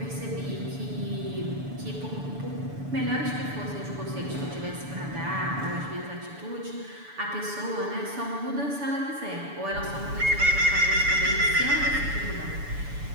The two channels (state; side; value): late; left; 7.0 ms